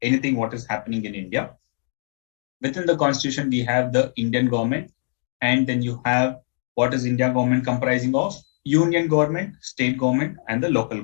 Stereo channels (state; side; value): silent; right; digital silence